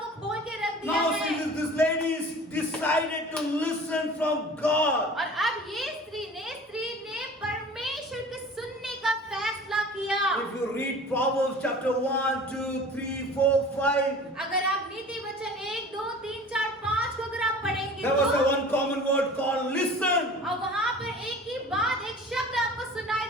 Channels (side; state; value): both; normal; correlation 0.42